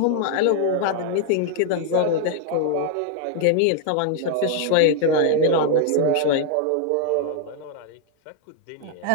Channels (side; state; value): both; different; correlation 0.00